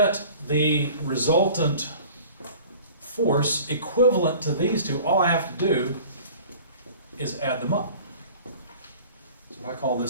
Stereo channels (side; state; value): both; inverted; correlation -0.45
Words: the resultant force equivalent to these two, all I have to do is add them up. So if I call